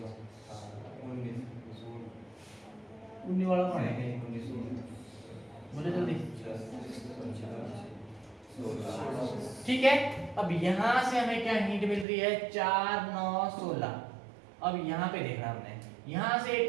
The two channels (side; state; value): left; drops out; at 12.1 s